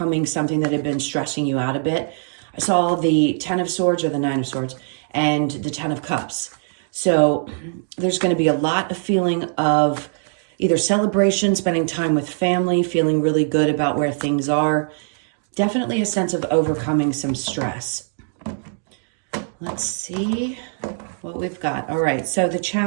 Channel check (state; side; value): silent; left; digital silence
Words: something that had been stressing you out a bit. I saw the 10 of Swords or the 9 of Swords and the 10 of Cups. So there's going to be a lot of feeling of either celebration, spending time with family, feeling really good about where things are. Definitely a sense of overcoming some stress. Let's see what we've got. All right, so the